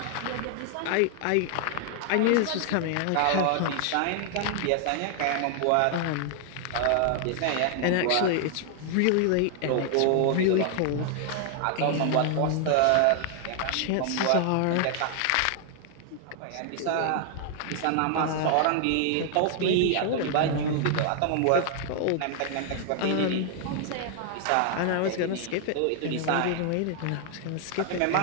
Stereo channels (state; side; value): different; both; correlation 0.00